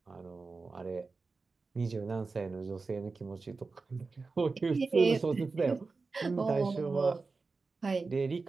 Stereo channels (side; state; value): left; quieter; 4.1 dB